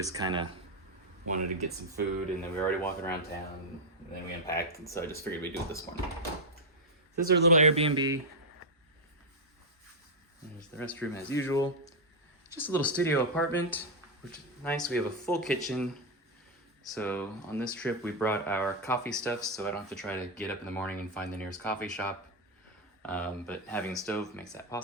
kind of wanted to get some food, and then we were already walking around town, and then we unpacked, and so I just figured we'd do it this morning. This is our little Airbnb. There's the restroom as usual. Just a little studio apartment, which is nice. We have a full kitchen. So on this trip, we brought our coffee stuff, so I don't have to try to get up in the morning and find the nearest coffee shop. But having a stove makes that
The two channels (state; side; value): normal; both; correlation 0.01